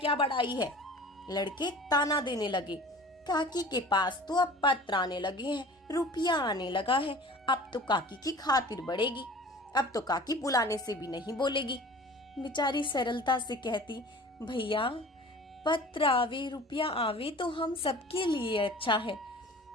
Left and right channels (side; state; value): both; normal; correlation 0.43